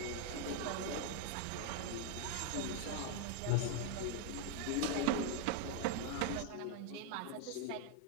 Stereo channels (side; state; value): both; different; correlation 0.00